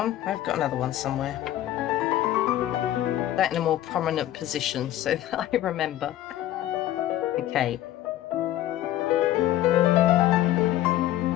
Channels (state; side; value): quieter; right; 13.4 dB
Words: I've got another one somewhere. That in a more prominent position so that I remember. Okay.